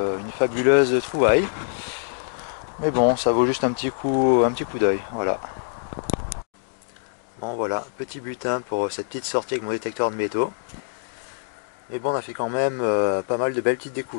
fabuleuse trouvaille. Mais bon, ça vaut juste un petit coup d'œil. Voilà. Bon voilà, petit butin pour cette petite sortie avec mon détecteur de métaux. Mais bon, on a fait quand même pas mal de belles petites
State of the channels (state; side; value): silent; right; 62 dB below the other